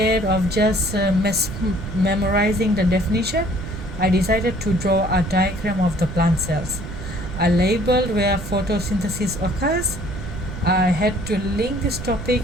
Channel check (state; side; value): noise; right; rumble, 9 dB below the sound